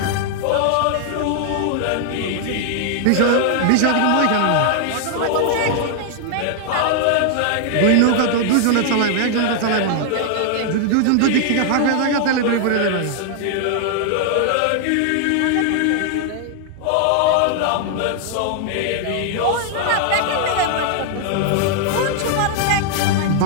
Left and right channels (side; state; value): both; different; correlation 0.00